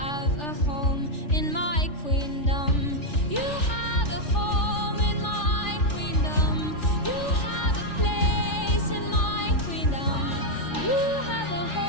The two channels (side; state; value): right; late; 3.4 ms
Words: a home in my queendom. You have a home in my queendom. You have a place in my queendom. You have a